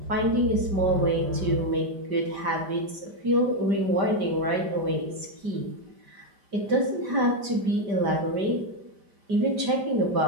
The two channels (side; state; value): left; late; 5.1 ms